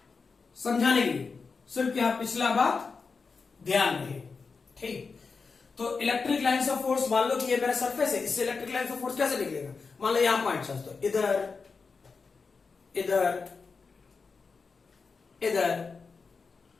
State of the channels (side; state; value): right; quieter; 4.8 dB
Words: समझाने के लिए सिर्फ यहां पिछला बात ध्यान रहे। ठीक, तो इलेक्ट्रिक लाइन्स ऑफ फोर्स, मान लो कि ये मेरा सरफेस है, इससे इलेक्ट्रिक लाइन्स ऑफ फोर्स कैसे निकलेगा। मान लो यहां पॉइंट चार्ज, तो इधर इधर इधर